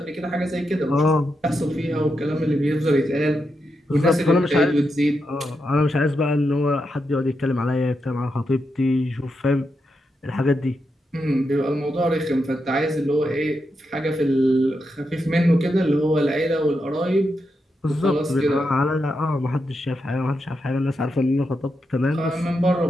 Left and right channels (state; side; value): normal; both; correlation 0.85